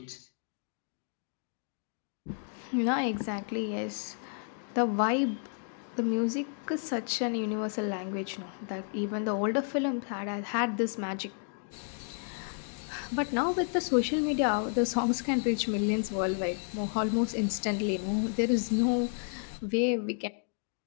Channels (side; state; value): right; silent; 57 dB below the other